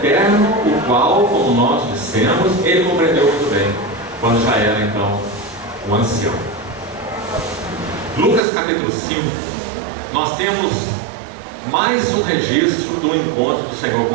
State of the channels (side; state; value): left; drops out; at 8.4 s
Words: o qual, como nós dissemos, ele compreendeu muito bem quando já era então um ancião. Lucas capítulo 5, nós temos mais um registro do encontro do Senhor